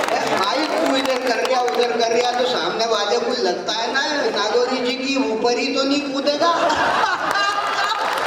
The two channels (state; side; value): identical; both; correlation 1.00